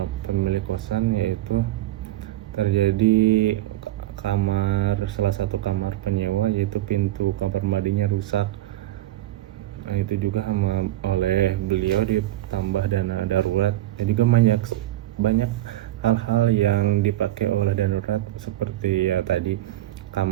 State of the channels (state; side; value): quieter; left; 14.9 dB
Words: pemilik kosan, yaitu terjadi salah satu kamar penyewa, yaitu pintu kamar mandinya rusak. Nah, itu juga oleh beliau ditambah dana darurat. Dan juga banyak hal-hal yang dipakai oleh dana darurat, seperti ya tadi